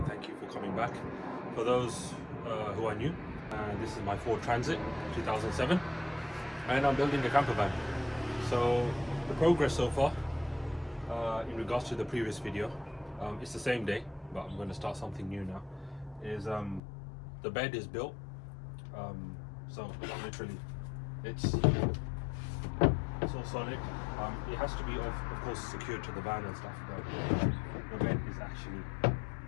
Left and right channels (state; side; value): drops out; right; at 16.8 s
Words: thank you for coming back. For those who are new, this is my Ford Transit 2007 and I'm building a camper van. So the progress so far, in regards to the previous video, it's the same day, but I'm going to start something new now, is the bed is built. So literally it's all solid. It has to be of course secured to the van and stuff, but the bed is actually,